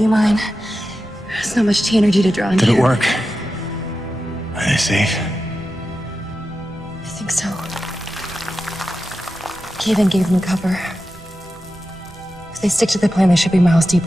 mine. There's not much energy to draw on. Did here. it work? Are they safe? I think so. Kaven gave them cover. If they stick to the plan, they should be miles deep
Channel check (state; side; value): normal; both; correlation 0.91